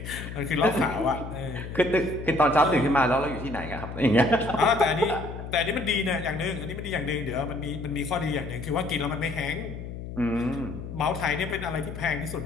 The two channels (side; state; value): left; noise; hum, 9 dB below the sound